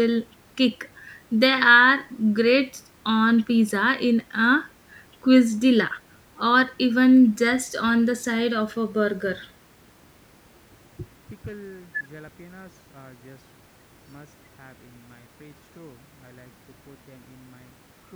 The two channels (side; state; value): both; identical; correlation 1.00